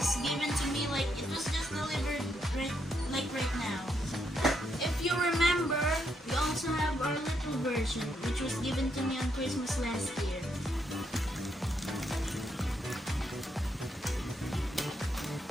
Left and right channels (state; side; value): normal; both; correlation 0.78